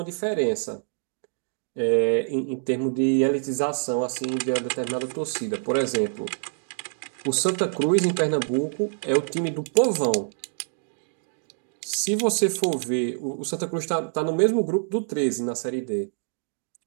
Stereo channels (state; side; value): silent; left; digital silence